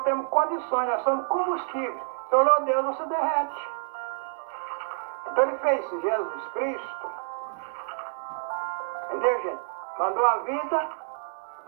condições, nós somos combustíveis. Se olhou Deus, você derrete. Então ele fez Jesus Cristo, entendeu, gente? Mandou a vida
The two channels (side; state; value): left; silent; 59 dB below the other